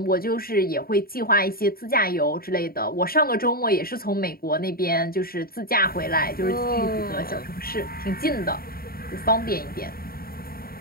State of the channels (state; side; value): late; right; 0.43 ms